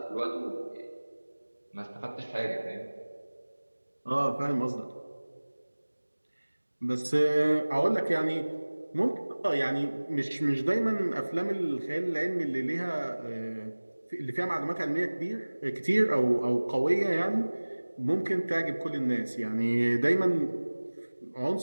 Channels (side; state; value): both; inverted; correlation -1.00